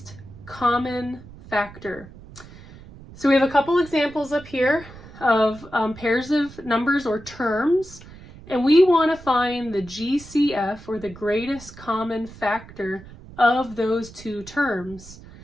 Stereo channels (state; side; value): noise; right; rumble, 18 dB below the sound